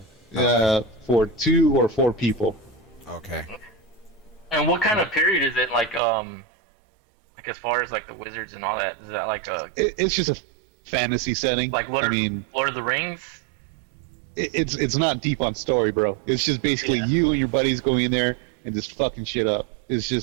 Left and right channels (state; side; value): drops out; left; at 6.0 s